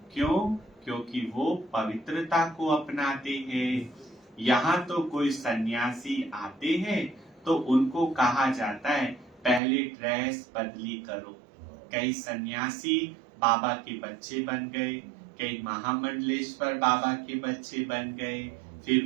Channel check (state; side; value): drops out; left; at 9.6 s